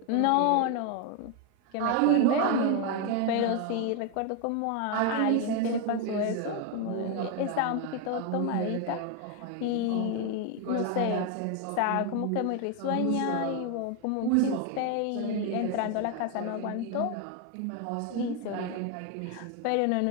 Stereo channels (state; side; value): different; both; correlation 0.01